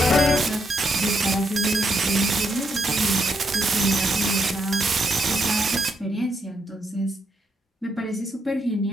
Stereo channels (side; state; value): both; normal; correlation 0.78